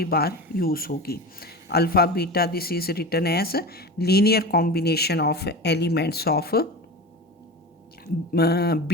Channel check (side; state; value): both; normal; correlation 0.29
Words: बार यूज़ होगी। Alpha beta this is written as linear combination of elements of